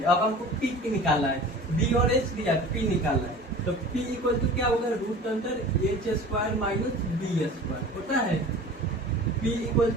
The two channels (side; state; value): both; normal; correlation 0.40